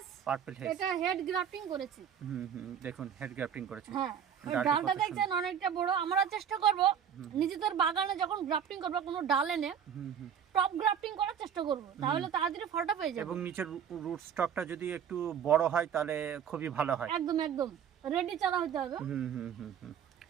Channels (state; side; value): quieter; left; 8.3 dB